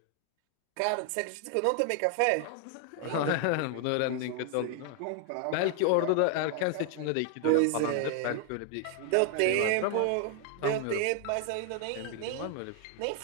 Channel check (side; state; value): both; different; correlation 0.00